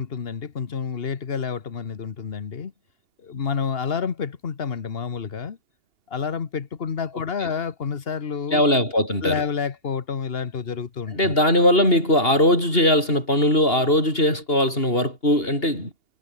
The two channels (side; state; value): right; late; 2.8 ms